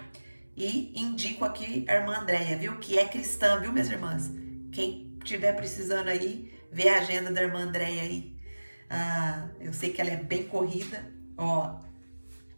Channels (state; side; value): inverted; both; correlation -1.00